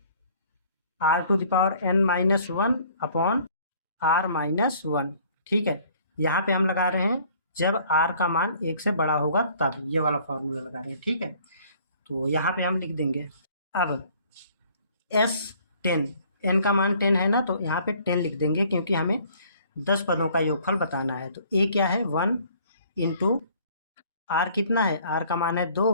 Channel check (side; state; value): both; inverted; correlation -0.57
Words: r to the power n minus 1 upon r minus 1। ठीक है, यहाँ पे हम लगा रहे हैं जब r का मान 1 से बड़ा होगा तब, ये वाला फार्मूला लगा रहे हैं। ठीक है, तो यहाँ पे हम लिख देंगे। अब s 10, n का मान 10 है ना, तो यहाँ पे 10 लिख देंगे क्योंकि हमें 10 पदों का योगफल बताना है। तो a क्या है? 1 इंटू r कितना है? r का मान है 2